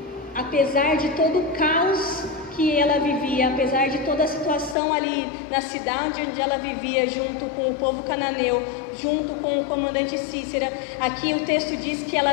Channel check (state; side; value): drops out; right; at 4.8 s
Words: apesar de todo o caos que ela vivia, apesar de toda a situação ali na cidade onde ela vivia, junto com o povo cananeu, junto com o comandante Cícera, aqui o texto diz que